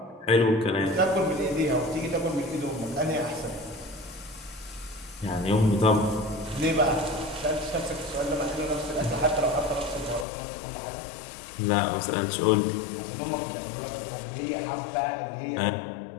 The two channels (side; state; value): right; drops out; at 10.2 s